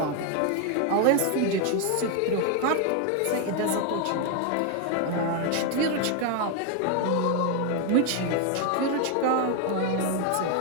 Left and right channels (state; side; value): different; both; correlation 0.01